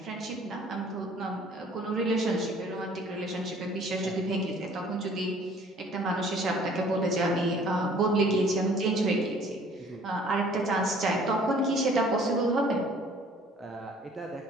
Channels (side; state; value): both; normal; correlation 0.54